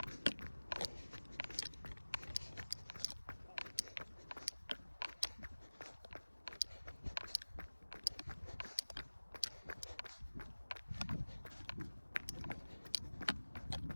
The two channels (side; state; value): both; inverted; correlation -1.00